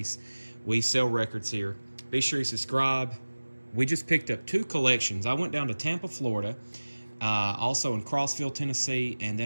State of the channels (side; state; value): both; inverted; correlation -1.00